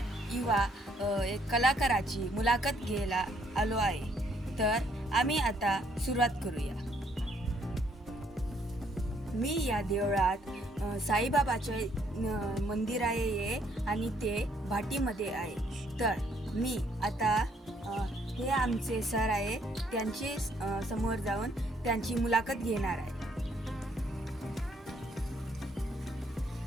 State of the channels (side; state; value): both; normal; correlation 0.68